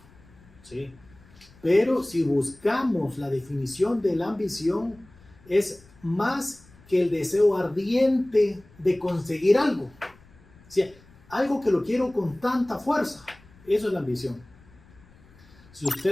¿Sí? Pero si buscamos la definición de la ambición, es más que el deseo ardiente de conseguir algo. O sea, algo que lo quiero con tanta fuerza. Eso es la ambición. Si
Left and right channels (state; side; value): noise; left; rumble, 26 dB below the sound